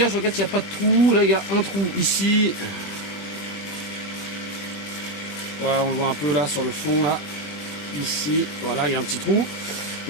Je regarde s'il n'y a pas de trou. Là, il y a un trou ici. Voilà, on le voit un peu là sur le fond là. Ici, voilà, il y a un petit trou.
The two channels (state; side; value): late; right; 21 ms